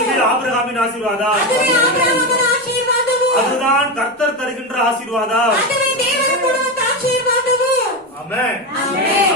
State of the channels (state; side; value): normal; both; correlation 0.15